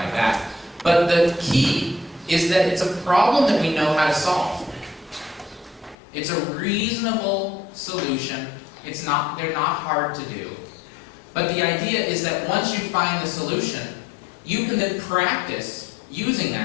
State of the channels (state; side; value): drops out; right; at 6.0 s